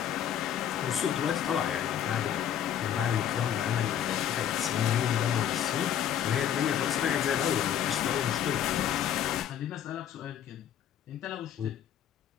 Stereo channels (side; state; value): right; quieter; 9.8 dB